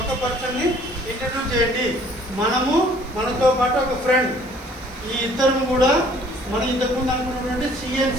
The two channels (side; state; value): right; noise; hiss, 26 dB below the sound